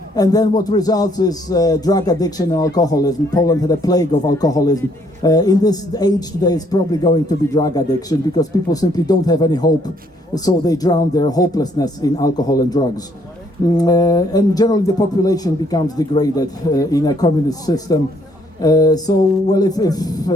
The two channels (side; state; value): both; normal; correlation 0.67